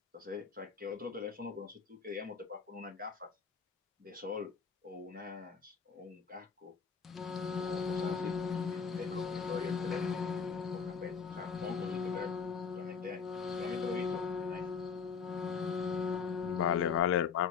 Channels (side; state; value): right; quieter; 6.0 dB